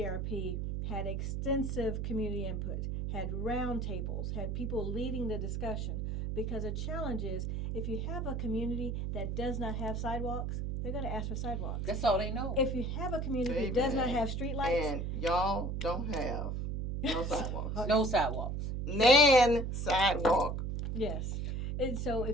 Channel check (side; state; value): right; noise; hum, 2 dB below the sound